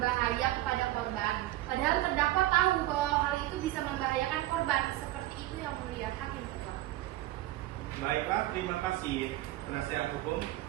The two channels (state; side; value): quieter; left; 16.0 dB